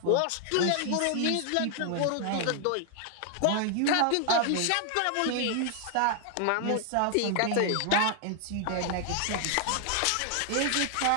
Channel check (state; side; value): different; both; correlation 0.00